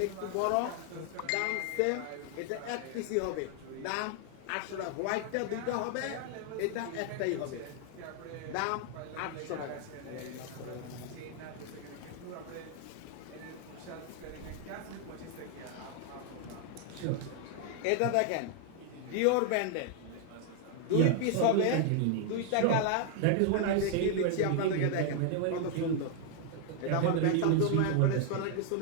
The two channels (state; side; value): different; both; correlation 0.00